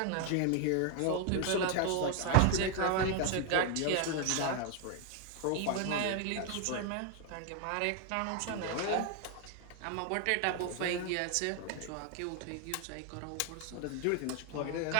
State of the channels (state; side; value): different; both; correlation 0.00